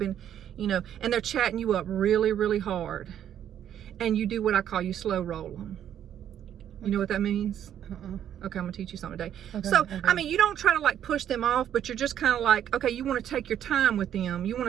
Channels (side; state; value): left; quieter; 10.1 dB